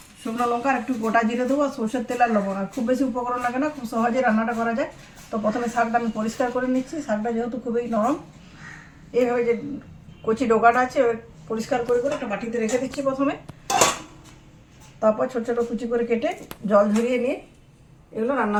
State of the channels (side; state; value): both; identical; correlation 1.00